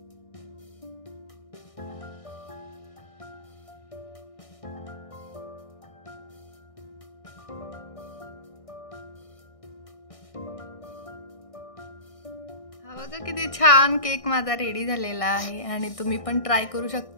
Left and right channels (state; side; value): late; right; 1.6 ms